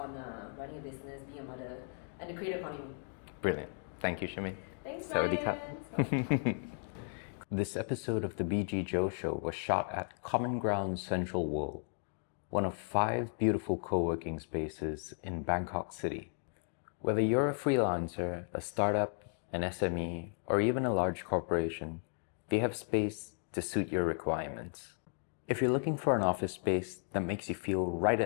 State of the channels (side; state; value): right; silent; 54 dB below the other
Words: running a business, being a mother, and the creator economy. Brilliant. Thank you, Shermaine. Thanks, Brian. This episode of the BG.JO show was shot at Common Ground Central World, one of 5 beautiful co-working spaces in Bangkok City. Whether you're a freelancer, a startup, an SME, or even a large corporation, they have space to suit your requirements. If you're looking for an office space that makes you feel right